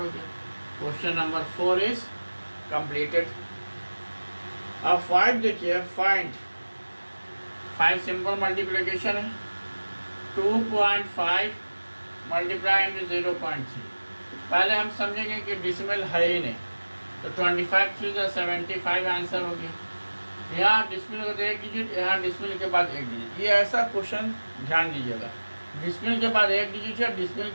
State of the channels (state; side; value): inverted; both; correlation -1.00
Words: गया। Question number 4 is completed. अब 5 देखिए, फाइंड 5 सिंपल मल्टीप्लिकेशन है 2.5 मल्टीप्लाई इंटू 0.3। पहले हम समझेंगे कि डिसिमल है ही नहीं, तो 25 3 75 आंसर हो गया। यहाँ डिसिमल को एक डिजिट, यहाँ डिसिमल के बाद एक डिजिट, ये ऐसा क्वेश्चन ध्यान दीजिएगा, डिसिमल के बाद एक डिजिट है, डिसिमल